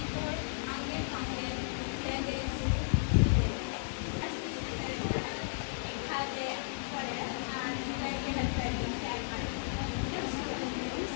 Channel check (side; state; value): right; silent; digital silence